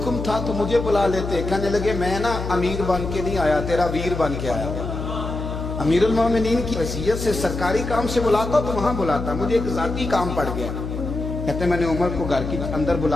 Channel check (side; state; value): left; noise; hum, 6 dB below the sound